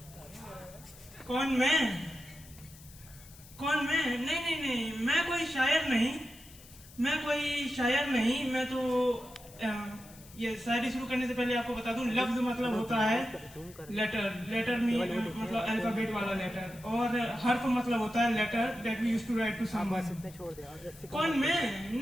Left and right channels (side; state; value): left; noise; hiss, 21 dB below the sound